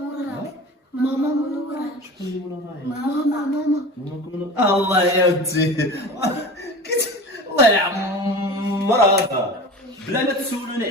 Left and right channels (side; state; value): both; normal; correlation 0.35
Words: ماما منوراك، ماما. الله يا ودي الله يعمر هذا. بلا ما تسولوني